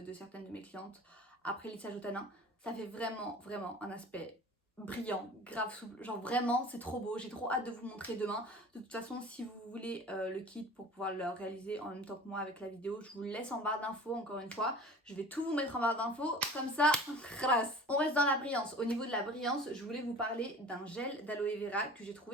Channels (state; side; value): normal; both; correlation 0.42